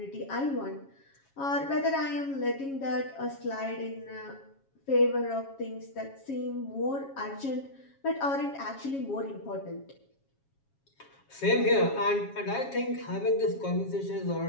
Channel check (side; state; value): right; late; 7.3 ms